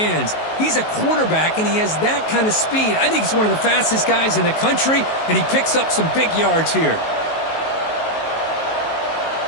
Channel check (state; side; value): late; right; 19 ms